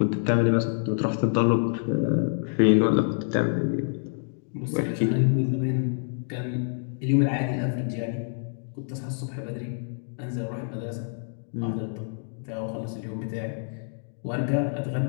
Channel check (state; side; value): silent; right; digital silence